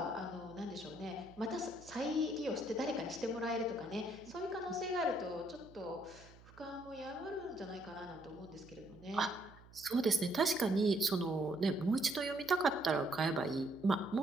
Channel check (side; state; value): right; noise; hum, 22 dB below the sound